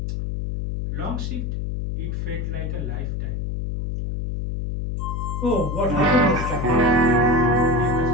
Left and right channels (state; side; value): noise; left; hum, 3 dB below the sound